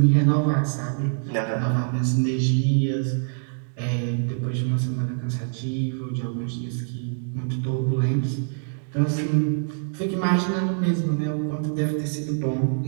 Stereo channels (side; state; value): left; silent; digital silence